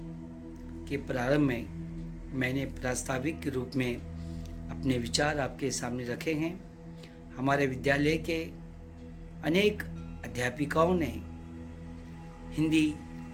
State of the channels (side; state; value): both; identical; correlation 1.00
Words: के प्रारंभ में मैंने प्रास्ताविक के रूप में अपने विचार आपके सामने रखे हैं। हमारे विद्यालय के अनेक अध्यापिकाओं ने हिंदी